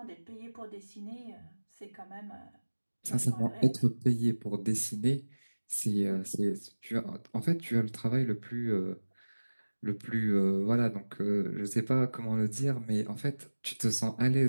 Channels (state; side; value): inverted; both; correlation -1.00